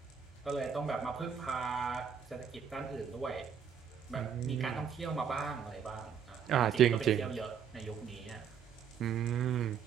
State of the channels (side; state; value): left; quieter; 7.5 dB